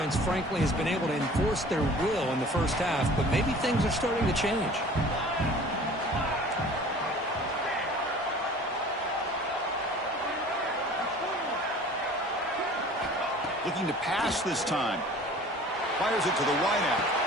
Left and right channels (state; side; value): normal; both; correlation 0.46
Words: frankly, has been able to enforce their will in the first half, but maybe things are starting to change. Looking to pass this time. Fires it to the wideout.